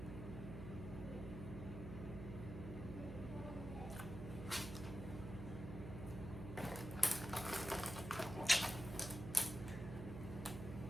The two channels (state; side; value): noise; right; hum, 7 dB below the sound